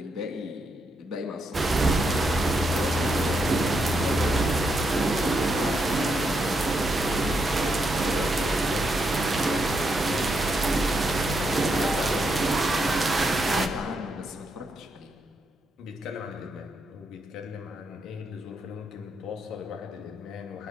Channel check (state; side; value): normal; both; correlation 0.80